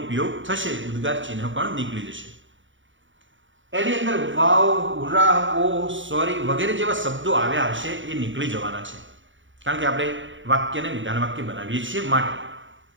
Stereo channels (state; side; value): late; left; 0.56 ms